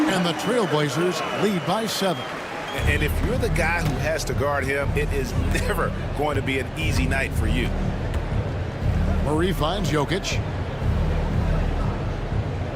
And the Trailblazers lead by 7. And if you're the guy who has to guard him, it is never going to be an easy night for you. Murray finds Jokic.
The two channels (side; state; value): both; identical; correlation 1.00